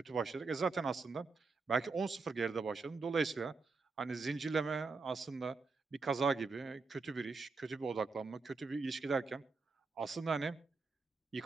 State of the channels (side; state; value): left; quieter; 4.2 dB